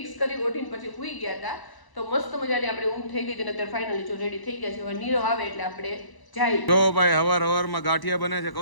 કરી ઓઢીને પછી સૂઈ ગયા હતા. તો મસ્ત મજાની આપણે ઊંઘ થઈ ગઈ છે અને અત્યારે ફાઇનલી જો રેડી થઈ ગયા છે. હવે નીરવ આવે એટલે આપણે જાય. જો ભાઈ હવાર ગાંઠિયા બને છે.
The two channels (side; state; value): right; late; 1.0 ms